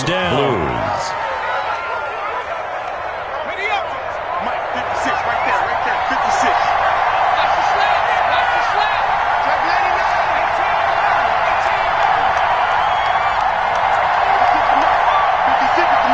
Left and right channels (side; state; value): both; identical; correlation 1.00